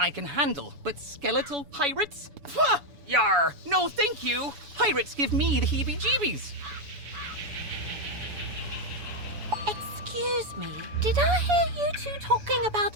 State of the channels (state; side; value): late; left; 7.0 ms